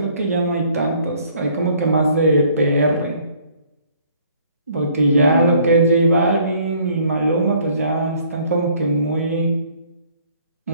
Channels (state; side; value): inverted; both; correlation -0.60